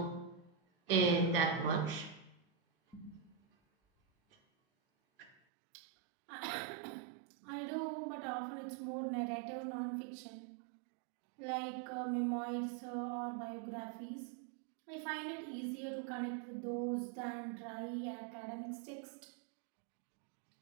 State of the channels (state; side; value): drops out; left; at 5.4 s